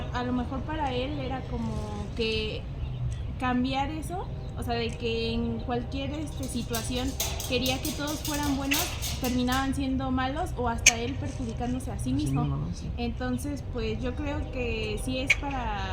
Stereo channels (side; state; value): both; identical; correlation 1.00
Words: a lo mejor para él era como que cambiar eso, o sea, de que en cualquier situación quería que todos fueran buenos, terminaban siendo malos o hasta él perjudicándose a sí mismo. Sí. Entonces, pues yo creo que sí es